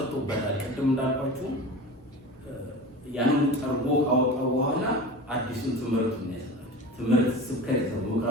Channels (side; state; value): both; normal; correlation 0.33